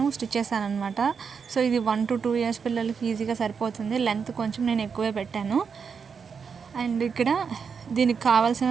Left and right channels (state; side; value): quieter; left; 6.1 dB